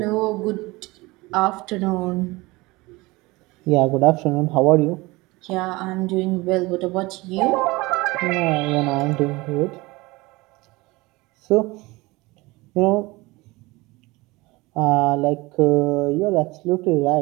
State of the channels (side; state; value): left; quieter; 22.3 dB